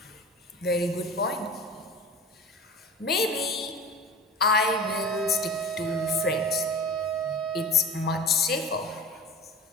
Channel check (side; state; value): both; normal; correlation 0.35